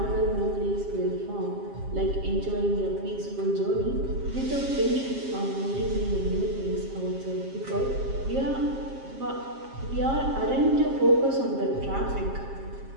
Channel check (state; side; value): late; left; 7.5 ms